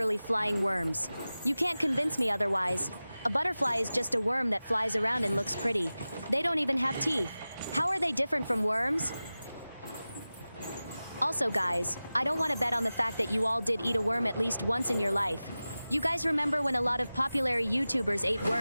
flying worms. You can't convince me otherwise. A butterfly is just a worm that flies around and looks pretty. They don't even have teeth. How are they different from worms? Also, guys, I don't want to bet on the fact that you all did eat a worm at least once in your life. You guys remember when a lot of popular YouTubers ate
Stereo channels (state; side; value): inverted; both; correlation -0.96